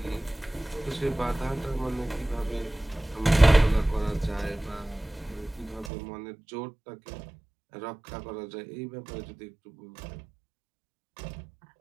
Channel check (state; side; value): drops out; left; at 5.9 s